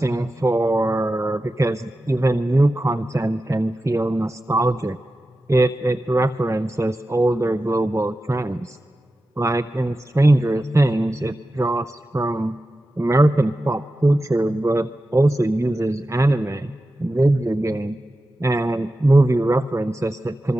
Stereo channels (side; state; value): both; normal; correlation 0.93